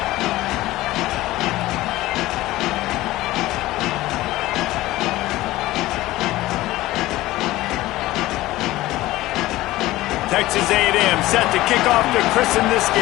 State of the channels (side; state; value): right; quieter; 17.2 dB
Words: Texas A&M set to kick off to christen this